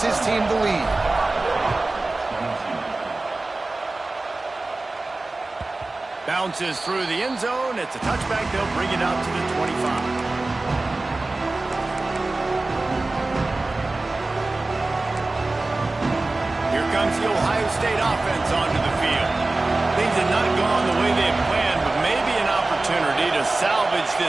his team the lead. Bounces through the end zone. It's a touchback. They'll bring it out to the 25. Here comes the Ohio State offense onto the field. Things have not gone the way they had planned, but maybe an opportunity to salvage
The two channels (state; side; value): quieter; left; 3.1 dB